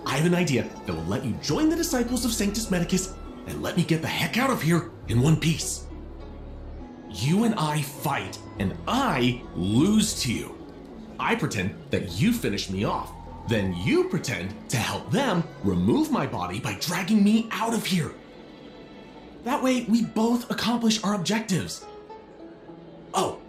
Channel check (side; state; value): both; identical; correlation 1.00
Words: I have an idea that will let you join the disciples of Sanctus Medicus and let me get the heck out of here in one piece. You and I fight, and I lose to you. I pretend that you finish me off. Then you pretend to help them remove my body by dragging me out of here. That way, we both accomplish our objectives. Oh,